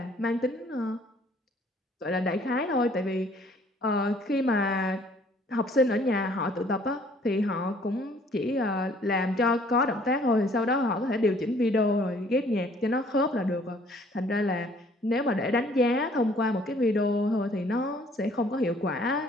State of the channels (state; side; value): normal; both; correlation 0.59